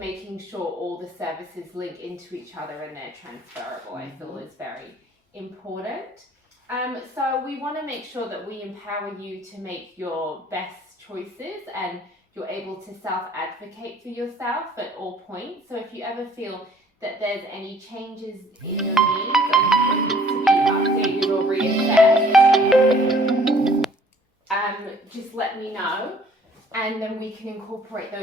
sure all the services link into each other and they're transferable, I feel is very important. So we want to make sure that we empower you to make your best choices and you're able to self-advocate for yourself at all points. So if you ever feel that there's any changes in your needs and needs to be updated or reassessed, just let me know. And then we can incorporate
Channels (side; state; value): both; normal; correlation 0.57